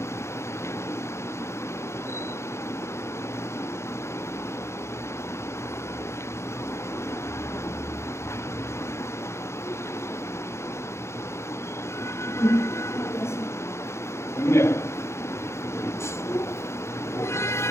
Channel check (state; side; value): late; right; 0.13 ms